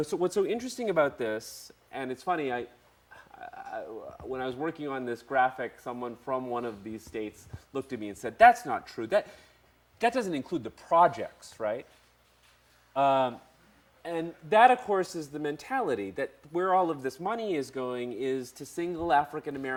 so what's so interesting about this, and it's funny, when I was working on this graphic, someone from one of these states looked at me and said, that's not true. That doesn't include the projects, right? And that, of course, is the mentality that where all of this money is going is to single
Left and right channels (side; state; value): both; identical; correlation 1.00